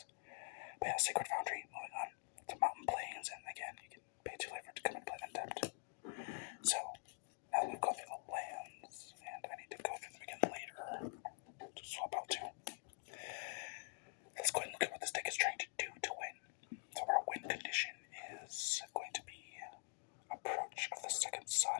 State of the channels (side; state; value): right; silent; digital silence